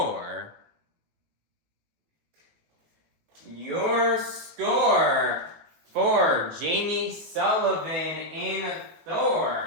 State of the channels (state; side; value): late; left; 18 ms